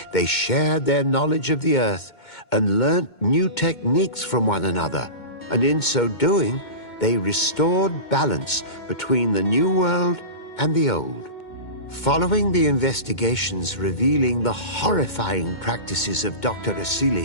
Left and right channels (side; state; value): right; late; 2.2 ms